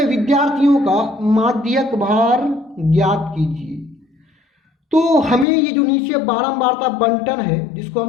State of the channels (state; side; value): drops out; right; at 5.5 s